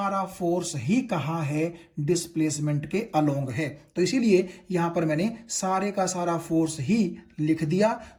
फोर्स ही कहां है, डिस्प्लेसमेंट के अलोंग है। तो इसीलिए यहां पर मैंने सारे का सारा फोर्स ही लिख दिया।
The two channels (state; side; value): identical; both; correlation 1.00